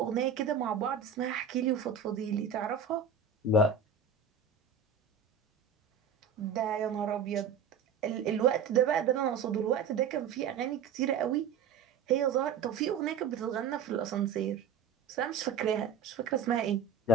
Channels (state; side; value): quieter; left; 6.9 dB